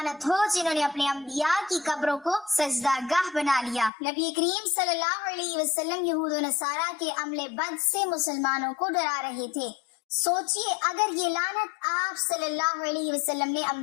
ہو جنہوں نے اپنے انبیاء کی قبروں کو سجدہ گاہ بنا لیا۔ نبی کریم صلی اللہ علیہ وسلم یہود و نصارہ کے عمل بد سے مسلمانوں کو ڈرا رہے تھے۔ سوچئے اگر یہ لعنت آپ صلی اللہ علیہ وسلم نے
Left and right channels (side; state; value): right; drops out; at 3.9 s